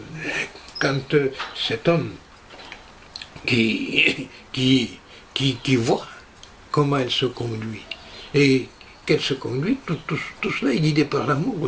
cet homme qui voit comment elle se conduit, et qu'elle se conduit, tout cela est guidé par l'amour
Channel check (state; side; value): identical; both; correlation 1.00